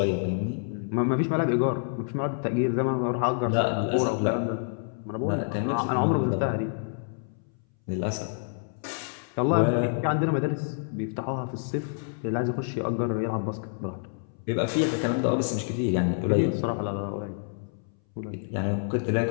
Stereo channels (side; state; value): right; silent; 60 dB below the other